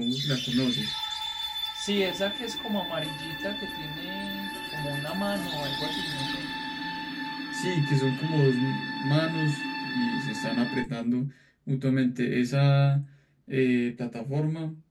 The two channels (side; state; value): both; identical; correlation 1.00